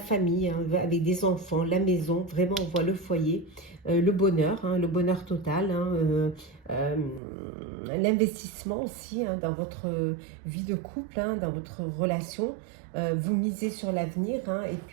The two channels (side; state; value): left; drops out; at 7.2 s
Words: hein, avec des enfants, la maison, vraiment on voit le foyer, le bonheur, hein, le bonheur total, hein, l'investissement aussi, hein, dans votre vie de couple, hein, dans votre relation. Vous misez sur l'avenir, hein, et